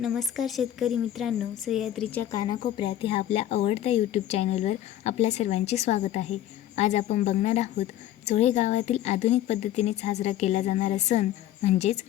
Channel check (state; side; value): quieter; right; 12.4 dB